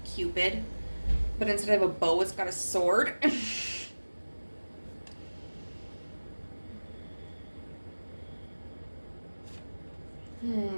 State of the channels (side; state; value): both; inverted; correlation -1.00